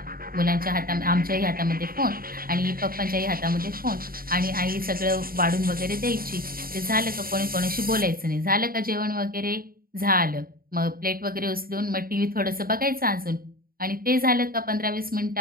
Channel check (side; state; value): left; late; 0.43 ms